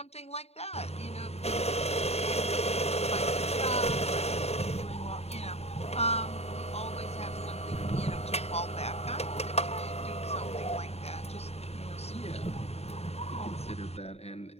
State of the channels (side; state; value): right; late; 0.30 ms